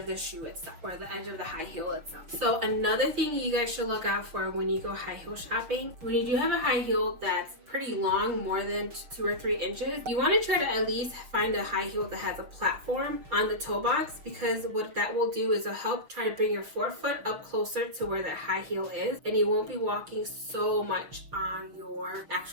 the shoe itself, or the edge of the high heel itself. So another thing you guys should look out for when you go high heel shopping, when you do have a high heel that's pretty long, more than 2 or 3 inches, you want to try to at least find a high heel that has a platform on the toe box, because what that will do is it'll help try to bring your forefoot up closer to where that high heel is, and you won't be walking so much on your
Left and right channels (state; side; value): late; left; 6.3 ms